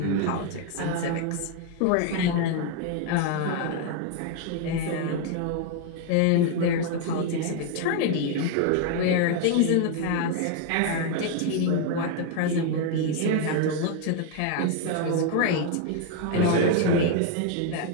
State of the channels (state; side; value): different; both; correlation 0.01